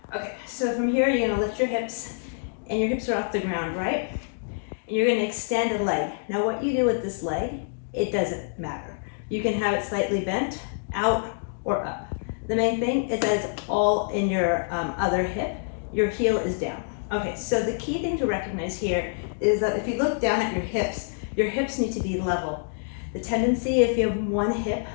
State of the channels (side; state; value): right; silent; digital silence